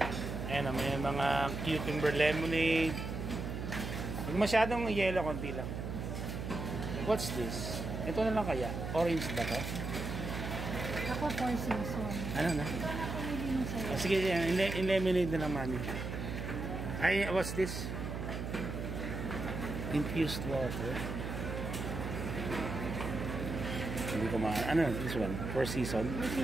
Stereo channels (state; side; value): noise; right; hum, 5 dB below the sound